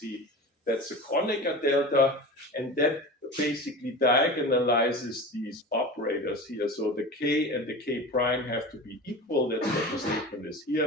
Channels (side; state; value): both; normal; correlation 0.32